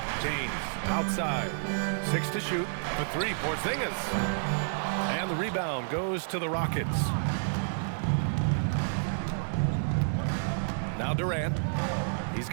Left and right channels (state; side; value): silent; left; digital silence